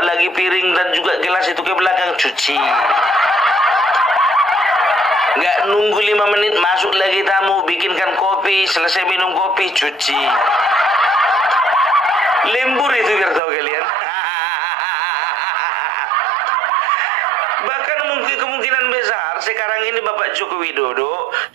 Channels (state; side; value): drops out; left; at 13.4 s